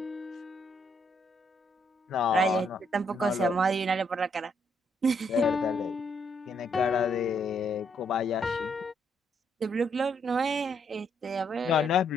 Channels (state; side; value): normal; both; correlation 0.73